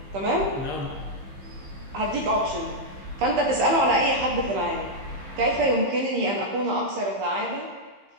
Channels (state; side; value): late; left; 15 ms